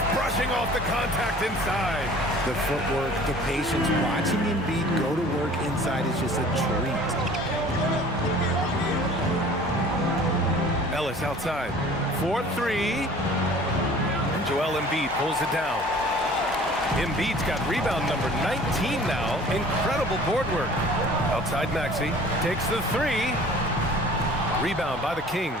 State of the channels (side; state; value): both; normal; correlation 0.47